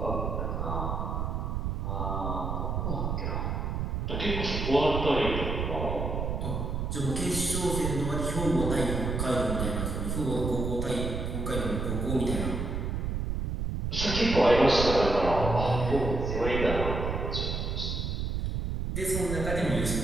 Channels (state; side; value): noise; right; rumble, 2 dB below the sound